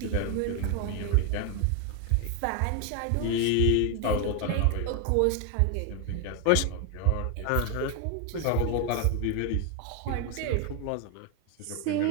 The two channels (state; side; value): different; both; correlation 0.01